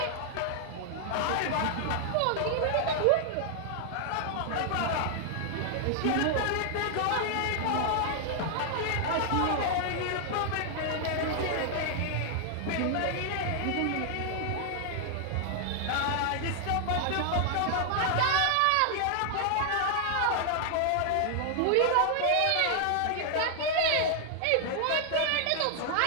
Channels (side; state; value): both; different; correlation 0.00